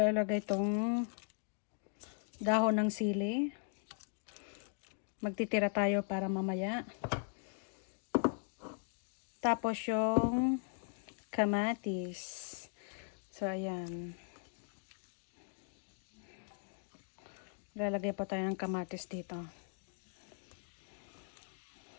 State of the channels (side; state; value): right; silent; 52 dB below the other